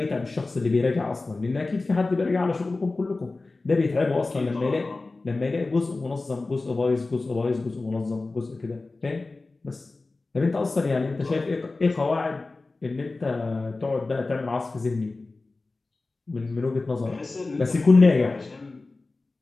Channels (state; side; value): quieter; right; 3.4 dB